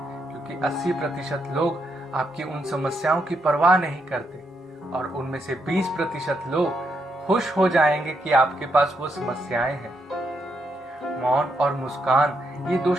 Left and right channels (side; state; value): both; normal; correlation 0.79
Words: क्योंकि 80% लोग आपकी उन समस्याओं की परवाह नहीं करते, और उनमें से 20% लोग खुश हो जाएंगे कि आपके पास वो समस्याएं हैं। मौन और मुस्कान ये 2